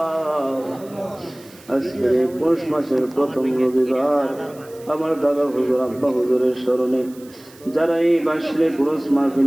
আজকে পৌষ মাসের প্রথম রবিবার আমার দাদা হুজুর আব্বা হুজুরের স্মরণে যারা এই বাসলে পুরুষ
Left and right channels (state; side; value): noise; right; hiss, 24 dB below the sound